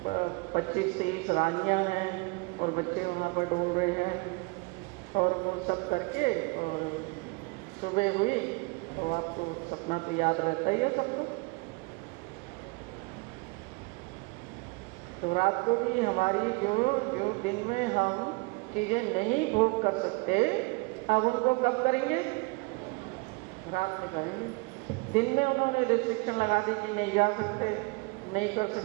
25-30 रानियाँ हैं और बच्चे वहाँ पर डोल रहे हैं, और वो सब करके और सुबह हुई। तो आपको सपना तो याद रहता ही है सबको। तो रात को भी हमारी जो दिन में हम चीज़ें नहीं भोग कर सकते, अब उनको कब करेंगे? रात में करेंगे। दिन में उन्होंने रिस्ट्रिक्शन लगा दी कि नहीं जा सकते, नहीं कर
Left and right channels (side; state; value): left; quieter; 28.3 dB